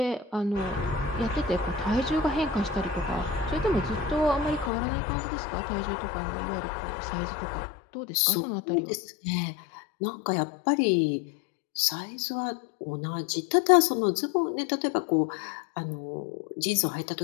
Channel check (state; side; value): drops out; right; at 4.7 s